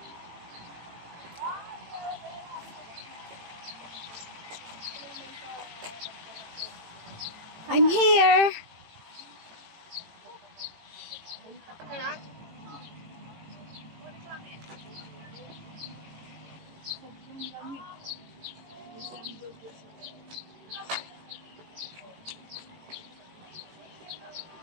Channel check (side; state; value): left; late; 18 ms